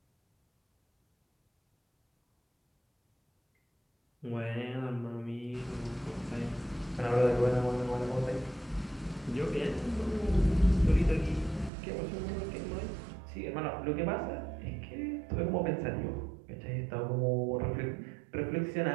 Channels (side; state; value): left; drops out; at 11.7 s